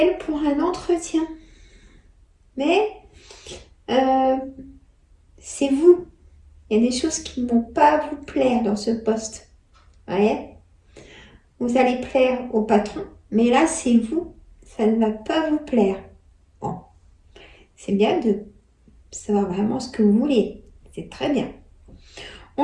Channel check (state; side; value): identical; both; correlation 1.00